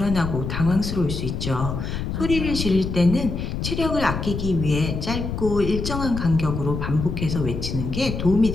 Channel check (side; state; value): left; noise; rumble, 4 dB below the sound